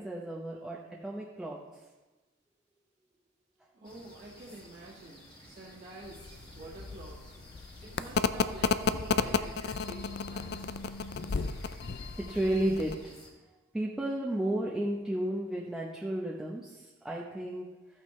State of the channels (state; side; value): normal; both; correlation 0.48